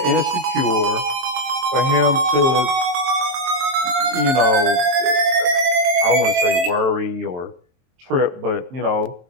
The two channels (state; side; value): late; left; 23 ms